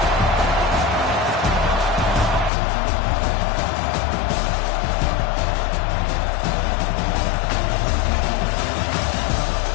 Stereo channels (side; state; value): right; drops out; at 2.5 s